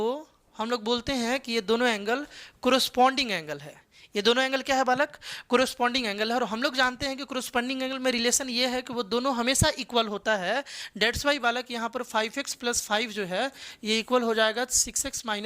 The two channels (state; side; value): identical; both; correlation 1.00